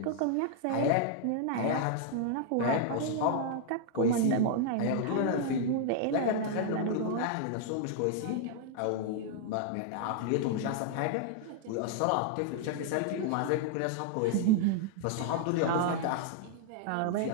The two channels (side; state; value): both; different; correlation 0.00